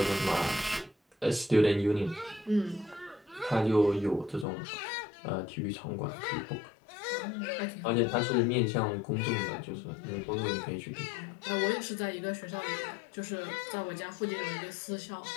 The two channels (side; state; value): right; drops out; at 4.5 s